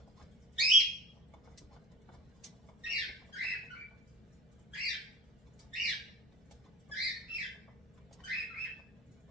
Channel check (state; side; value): normal; both; correlation 0.37